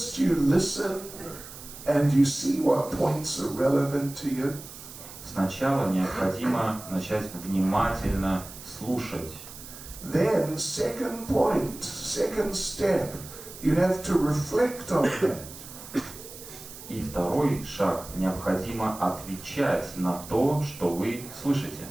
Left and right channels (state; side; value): noise; right; hiss, 15 dB below the sound